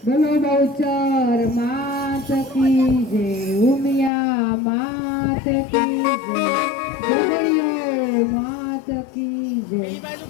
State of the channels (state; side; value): drops out; right; at 4.1 s